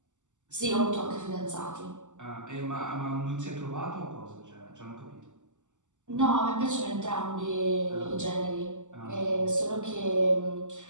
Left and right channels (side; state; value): left; late; 0.85 ms